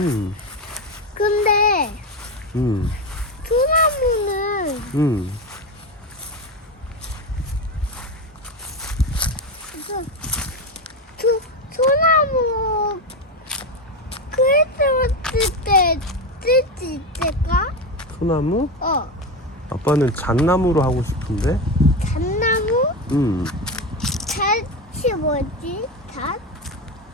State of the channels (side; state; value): both; normal; correlation 0.16